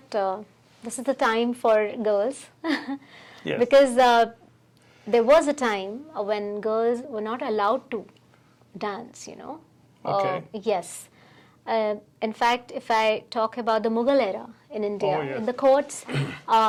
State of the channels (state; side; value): identical; both; correlation 1.00